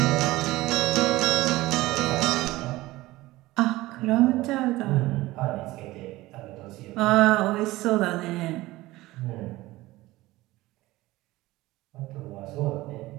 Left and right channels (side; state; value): left; quieter; 18.4 dB